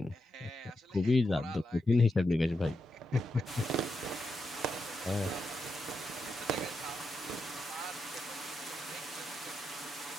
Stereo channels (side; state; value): both; normal; correlation 0.85